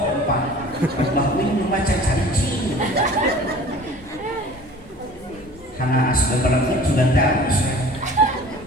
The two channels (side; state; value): both; normal; correlation 0.45